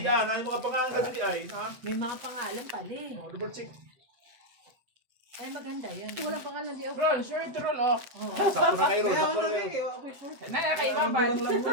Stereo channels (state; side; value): late; left; 7.9 ms